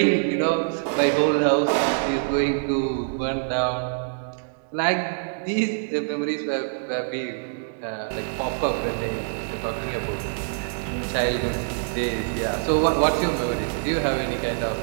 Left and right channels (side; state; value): left; silent; digital silence